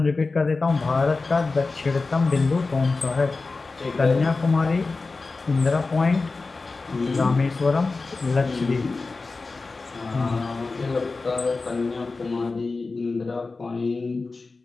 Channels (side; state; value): right; quieter; 3.8 dB